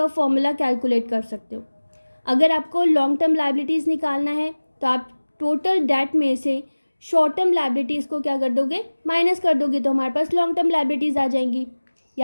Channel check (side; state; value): both; inverted; correlation -1.00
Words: फॉर्मूला कैलकुलेट कर सकते हो। अगर आपको लॉन्ग टर्म लायबिलिटीज़ निकालना है तो आप टोटल डेट में से शॉर्ट टर्म लायबिलिटीज़ को क्या कर दोगे, माइनस कर दोगे, तो हमारे पास लॉन्ग टर्म लायबिलिटीज़ आ जाएंगी।